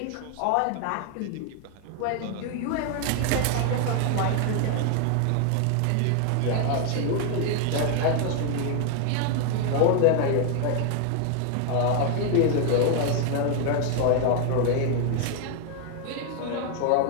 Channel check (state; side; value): different; both; correlation 0.00